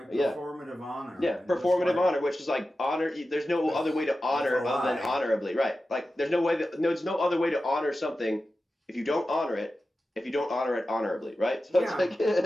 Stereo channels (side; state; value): both; normal; correlation 0.93